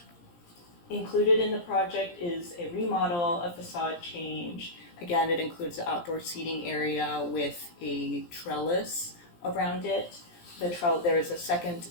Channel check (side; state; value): right; late; 17 ms